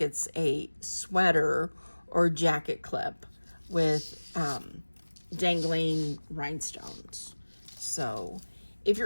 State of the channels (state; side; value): inverted; both; correlation -1.00